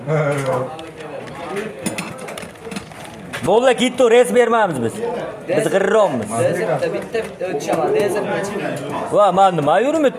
Bo'la ketdi, res bermaymiz biz. Biz g'irrommiz. Dezirte bitti ötüşemez. Dezirte çıkıyor. Va, men nima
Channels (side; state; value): both; identical; correlation 1.00